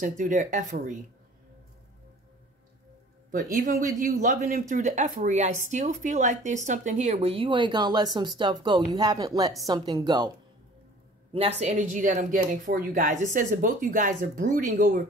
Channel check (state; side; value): normal; both; correlation 0.48